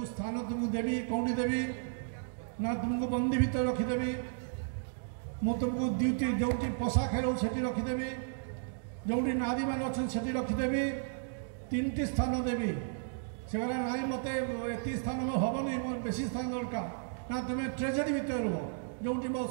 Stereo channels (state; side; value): silent; left; digital silence